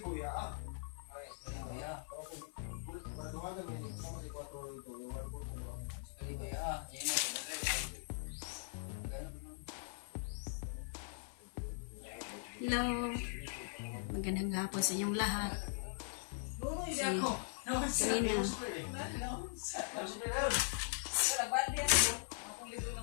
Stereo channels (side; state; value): right; silent; 51 dB below the other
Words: Hello! Magandang hapon sa inyong lahat. Kanina.